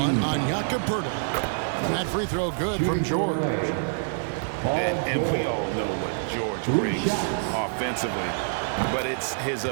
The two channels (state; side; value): silent; left; digital silence